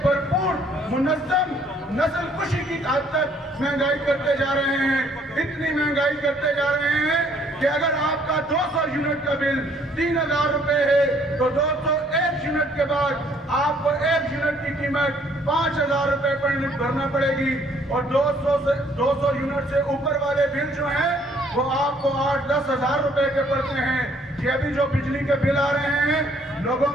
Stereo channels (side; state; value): both; normal; correlation 0.63